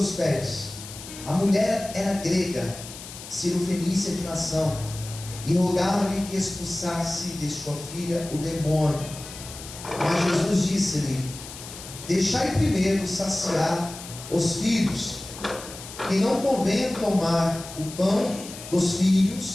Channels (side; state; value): left; noise; hiss, 13 dB below the sound